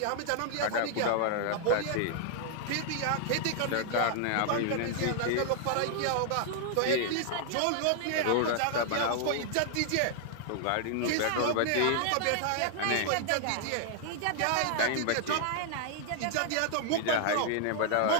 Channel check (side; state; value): both; different; correlation 0.00